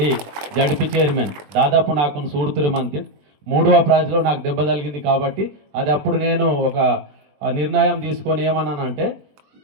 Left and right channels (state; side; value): late; left; 20 ms